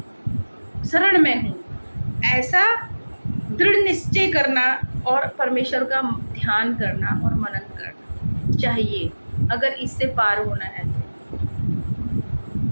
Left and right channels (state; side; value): inverted; both; correlation -1.00